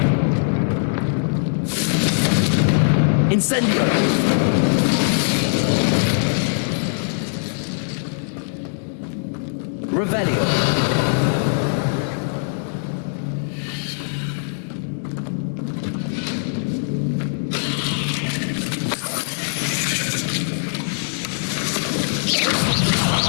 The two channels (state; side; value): silent; right; digital silence